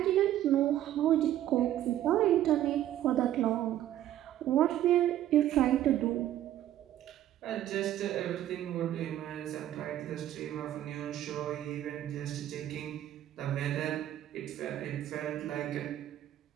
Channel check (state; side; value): quieter; left; 12.4 dB